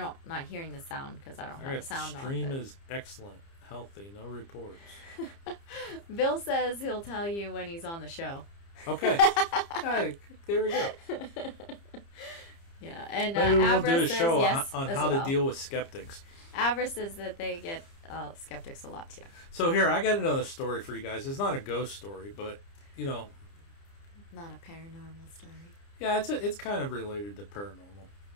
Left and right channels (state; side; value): late; right; 30 ms